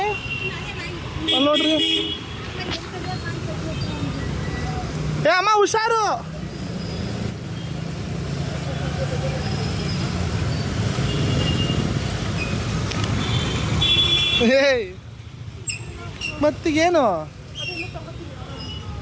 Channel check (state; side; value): identical; both; correlation 1.00